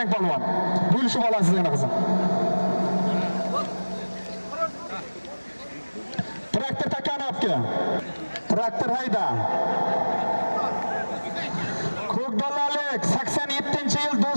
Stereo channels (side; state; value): both; inverted; correlation -1.00